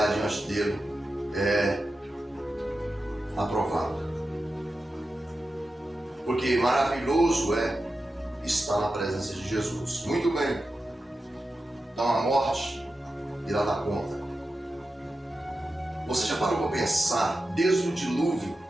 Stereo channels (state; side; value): normal; both; correlation 0.91